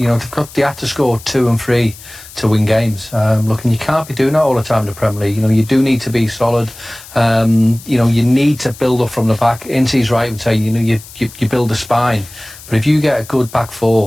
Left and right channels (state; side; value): noise; left; hiss, 18 dB below the sound